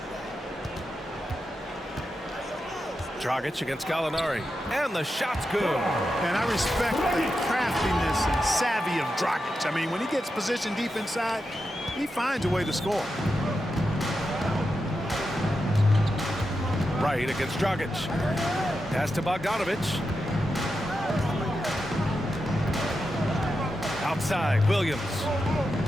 Dragic against Gallinari. And the shot's good. And I respect the craftiness and savvy of Dragic. I mean, when he gets positioned deep inside, he finds a way to score. Wright against Dragic. Pass to Bogdanovic. Outside, Williams.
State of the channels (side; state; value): both; normal; correlation 0.88